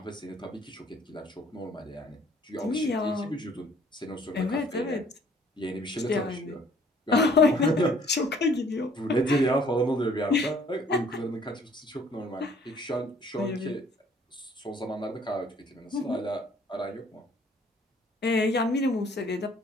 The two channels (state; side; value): normal; both; correlation 0.58